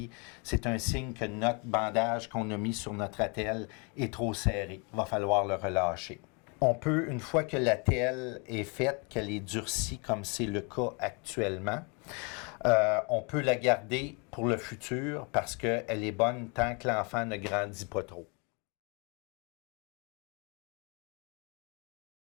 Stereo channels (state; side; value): quieter; right; 33.6 dB